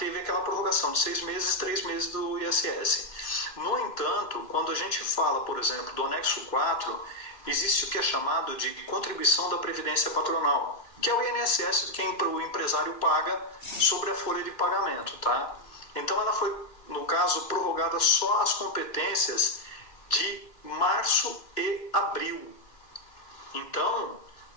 aquela prorrogação de 6 meses e 3 meses do ISS. No entanto, quando a gente fala, por exemplo, do anexo 4, existe o que é chamado de contribuição da Previdência Patronal, que é o INSS que o empresário paga sobre a folha de pagamento, tá? Então ela foi, no caso, prorrogada só as competências de março e abril. Então,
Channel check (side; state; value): right; late; 2.4 ms